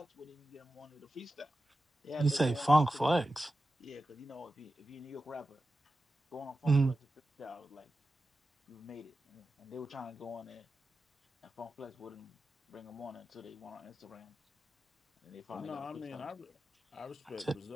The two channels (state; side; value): normal; both; correlation 0.93